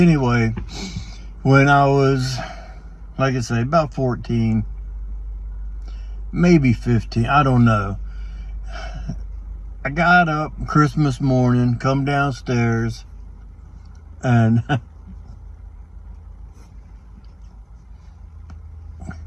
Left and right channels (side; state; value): both; identical; correlation 1.00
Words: when I was, like I say, about 14, maybe 15, I don't know. I got up Christmas morning, come downstairs, and